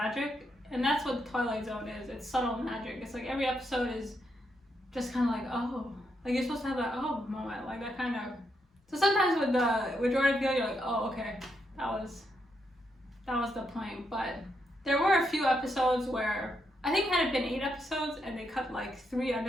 and that's what the Twilight Zone is. It's subtle magic. It's like every episode is just kind of like, oh, like you're supposed to have that oh moment, like that kind of. So sometimes with Jordan Peele, you're like, oh, okay, that was the point. But there were a few episodes where I think had it been 8 episodes and they cut like 3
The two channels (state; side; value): normal; both; correlation 0.80